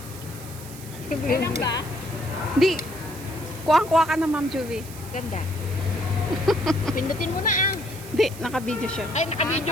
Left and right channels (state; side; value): noise; right; hiss, 16 dB below the sound